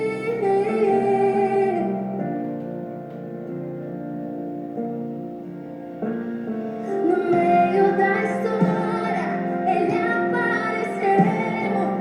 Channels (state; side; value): identical; both; correlation 1.00